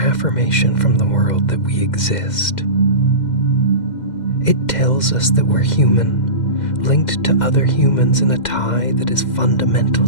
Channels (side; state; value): right; late; 2.1 ms